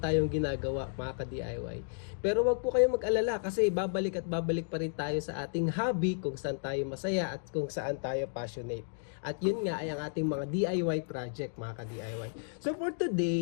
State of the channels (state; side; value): silent; right; digital silence